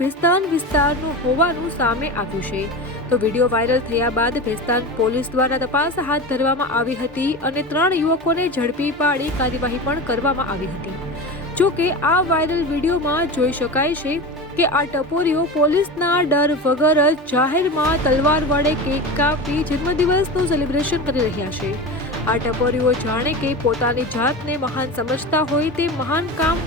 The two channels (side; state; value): both; normal; correlation 0.27